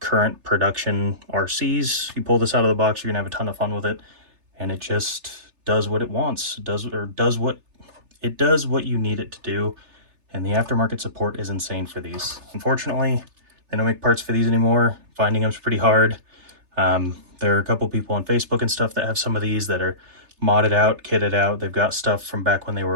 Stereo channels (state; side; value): late; left; 3.3 ms